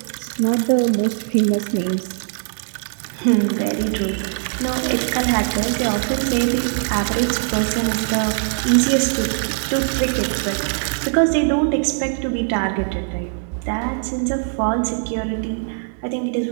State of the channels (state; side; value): silent; left; digital silence